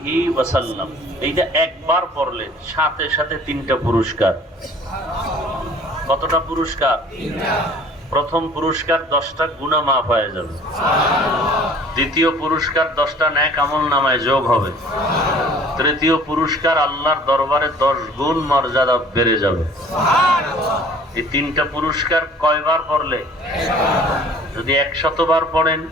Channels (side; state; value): both; normal; correlation 0.50